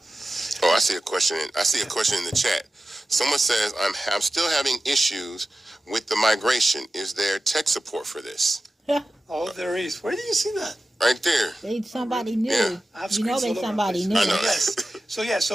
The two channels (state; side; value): normal; both; correlation 0.94